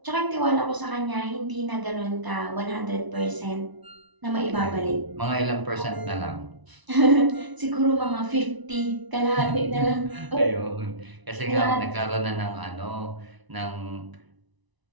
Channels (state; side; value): late; left; 1.0 ms